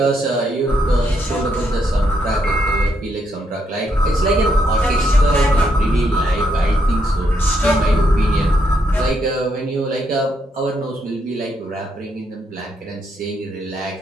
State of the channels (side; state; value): both; normal; correlation 0.77